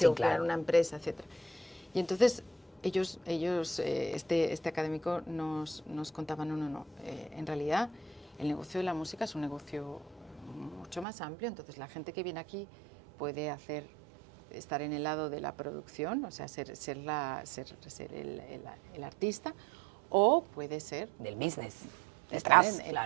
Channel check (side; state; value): left; drops out; at 11.1 s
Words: crear una empresa, etc. Y entonces ellos este académico nos contaban, no, en realidad el negocio de la música es un negocio mucho más amplio, entonces la gente que viene aquí puede estar en el lado de la producción, o sea, ser el artista, o puede ser... del business, detrás,